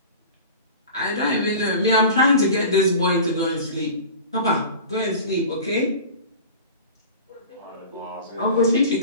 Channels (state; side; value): inverted; both; correlation -0.37